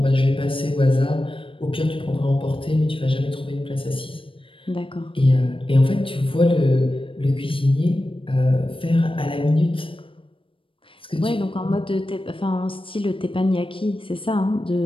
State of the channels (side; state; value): right; late; 0.25 ms